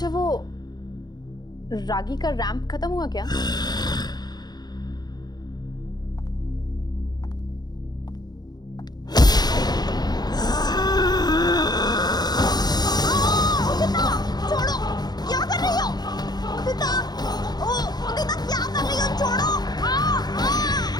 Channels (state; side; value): late; right; 0.20 ms